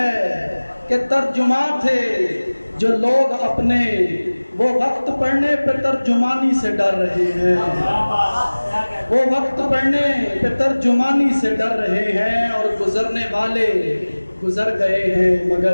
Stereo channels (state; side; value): inverted; both; correlation -1.00